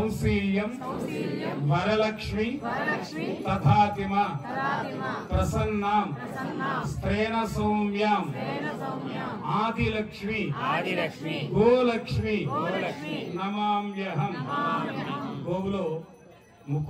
వరలక్ష్మి తథాతిమ ప్రసన్నాం స్త్రేణ సౌమ్యాం ఆదిలక్ష్మి గోలక్ష్మి నమామ్యహం. గోవులో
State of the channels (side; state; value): both; identical; correlation 1.00